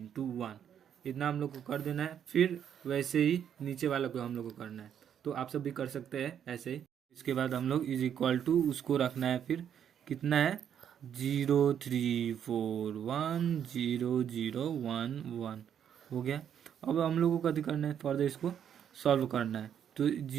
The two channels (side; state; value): left; quieter; 9.0 dB